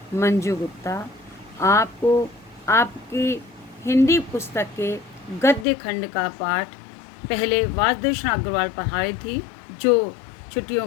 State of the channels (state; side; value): drops out; right; at 5.7 s